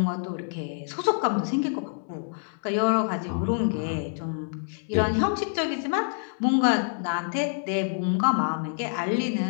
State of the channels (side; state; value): right; silent; digital silence